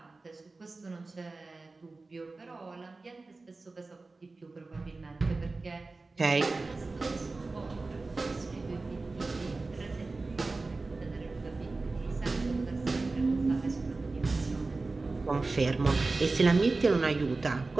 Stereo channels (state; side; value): quieter; left; 3.6 dB